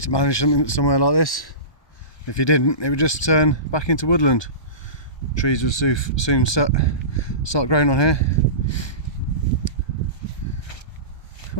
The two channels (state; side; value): late; right; 1.2 ms